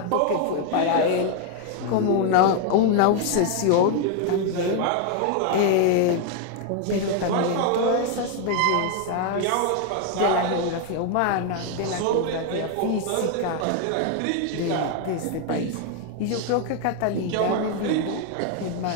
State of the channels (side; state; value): both; different; correlation 0.00